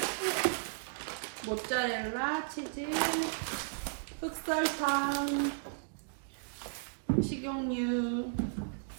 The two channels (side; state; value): left; silent; digital silence